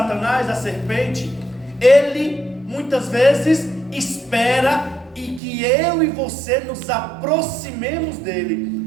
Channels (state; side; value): drops out; left; at 5.4 s